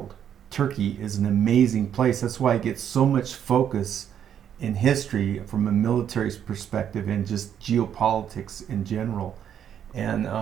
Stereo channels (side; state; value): left; quieter; 9.2 dB